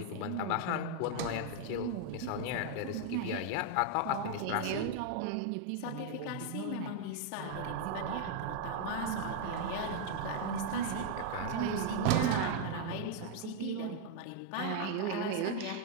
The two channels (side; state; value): both; different; correlation 0.00